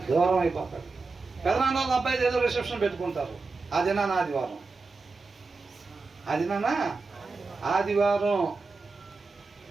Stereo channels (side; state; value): left; quieter; 4.0 dB